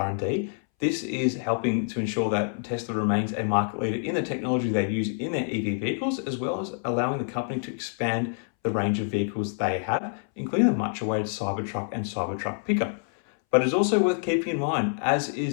This is helping to ensure that Tesla remains a market leader in the technology they use in their EV vehicles, as well as allowing the company to expand the range of vehicles they have, including the much-awaited Cybertruck and Cybertruck pickup. But it's also worth keeping in mind, as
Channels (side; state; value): right; silent; 60 dB below the other